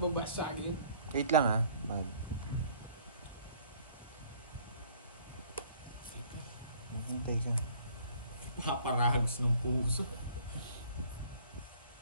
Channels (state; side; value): inverted; both; correlation -0.57